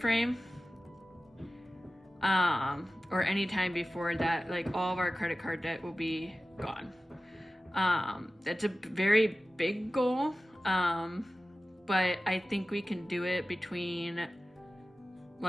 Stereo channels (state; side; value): normal; both; correlation 0.95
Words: or any time before that, like all of our credit card debt will be gone. That's a very big goal, but I think we can do it between